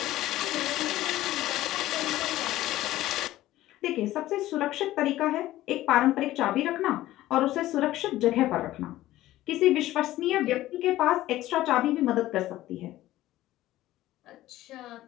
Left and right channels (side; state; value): right; quieter; 15.4 dB